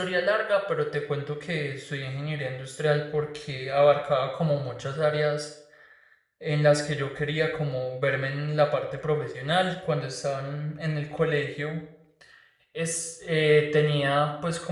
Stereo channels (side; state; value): both; identical; correlation 1.00